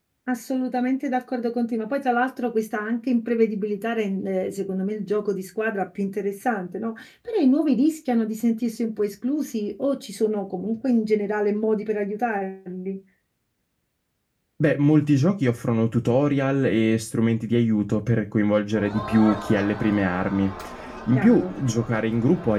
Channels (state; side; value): identical; both; correlation 1.00